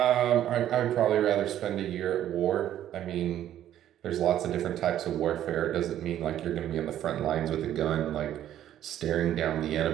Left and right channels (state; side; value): quieter; left; 11.6 dB